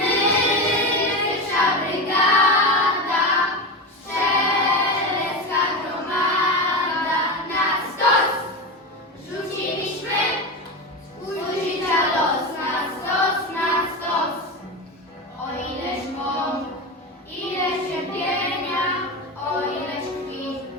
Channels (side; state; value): both; normal; correlation 0.20